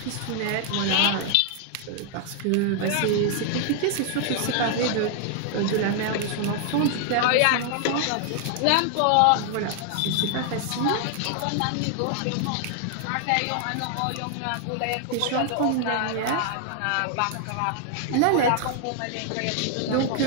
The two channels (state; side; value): different; both; correlation 0.00